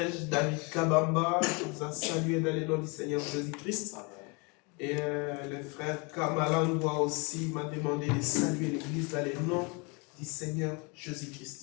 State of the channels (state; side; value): quieter; right; 30.8 dB